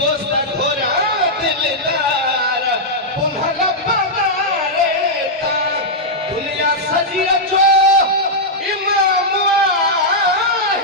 घोरा दिलदार पुनहला पगारे ता दुनिया सजिया जो इमाम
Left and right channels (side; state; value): both; normal; correlation -0.07